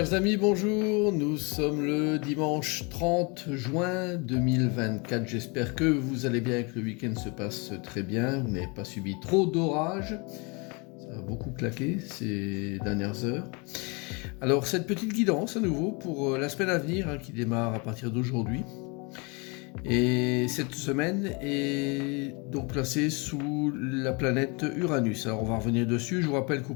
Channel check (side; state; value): right; quieter; 30.4 dB